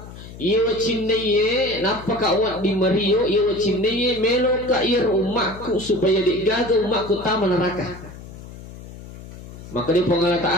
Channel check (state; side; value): noise; left; hum, 15 dB below the sound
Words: Ia cinnaye napa ka awak di Mario, ia cinnaye melo ka ir umatku supaya digaga umatku taman neraka. Maka dia Allah